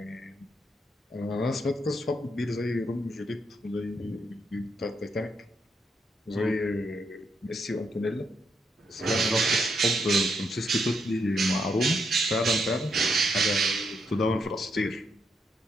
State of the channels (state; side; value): normal; both; correlation 0.78